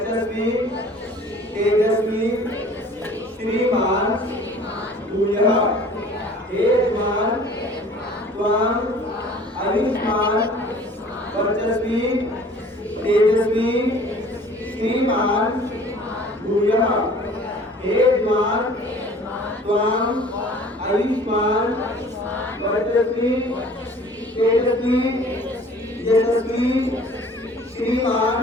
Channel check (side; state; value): both; normal; correlation 0.49